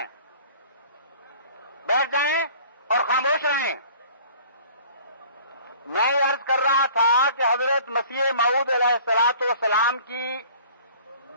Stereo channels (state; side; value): inverted; both; correlation -0.50